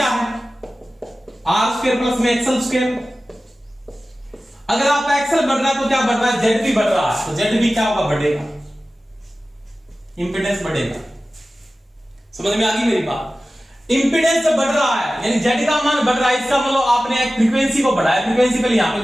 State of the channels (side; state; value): both; normal; correlation 0.96